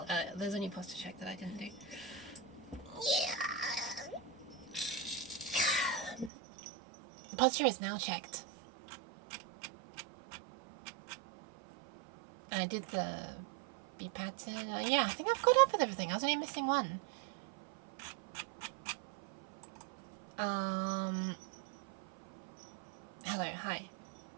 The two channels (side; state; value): left; drops out; at 6.3 s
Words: there's only posture check that I didn't do. The posture is now checked. And I did the B pattern. Yeah, I think I've caught up with everything. I was only missing one. Hello, hi.